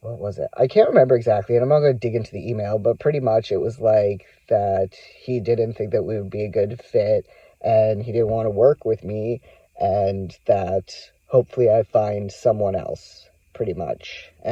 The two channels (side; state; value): both; identical; correlation 1.00